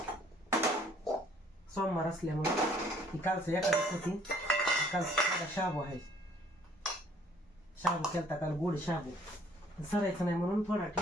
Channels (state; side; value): normal; both; correlation 0.60